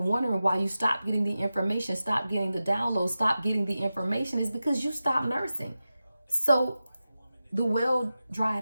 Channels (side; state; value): both; inverted; correlation -0.93